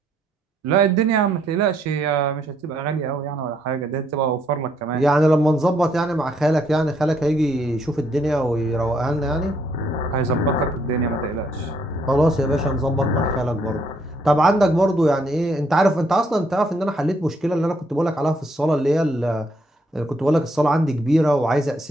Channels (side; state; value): both; normal; correlation 0.71